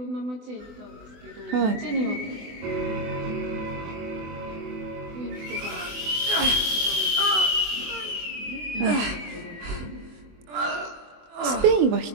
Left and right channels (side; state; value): left; late; 24 ms